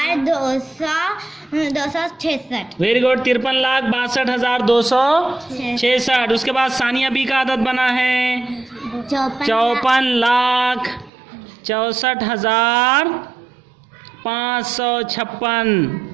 Very good. 53,62,266। उसके बाद सानिया बी का अदद बना है 54,64,556।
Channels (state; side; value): drops out; left; at 11.1 s